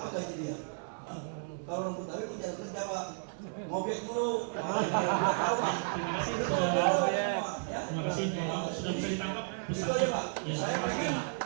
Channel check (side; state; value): left; silent; digital silence